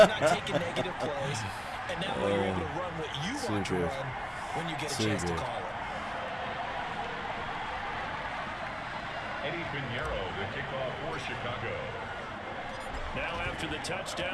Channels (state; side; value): identical; both; correlation 1.00